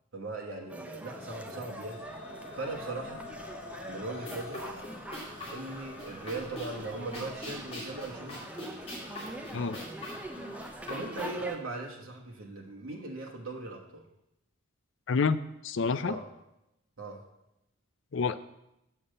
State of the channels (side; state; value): both; normal; correlation 0.23